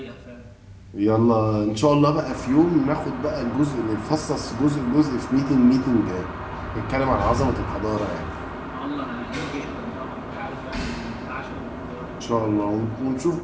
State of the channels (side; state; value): both; identical; correlation 1.00